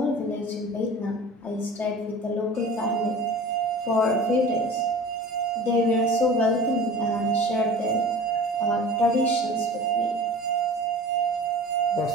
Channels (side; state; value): both; normal; correlation 0.39